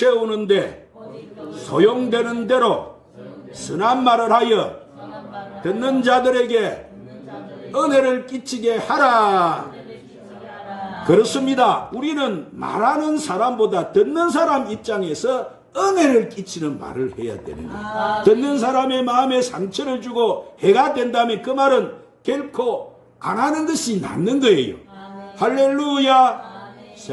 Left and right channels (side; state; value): both; identical; correlation 1.00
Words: 소용되는 대로 선한 말을 하여 듣는 자들에게 은혜를 끼치게 하라. 그렇습니다. 우리는 말하는 사람보다 듣는 사람 입장에서 은혜를 끼치는 말을 해야 되는 거예요. 듣는 사람의 마음에 상처를 주고 해가 된다면 그 말은 결코 안 하는 것이 낫는 거예요. 할렐루야.